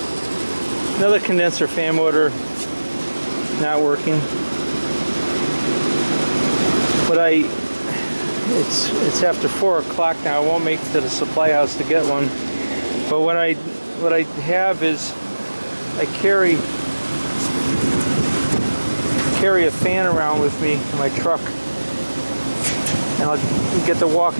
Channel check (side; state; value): both; inverted; correlation -1.00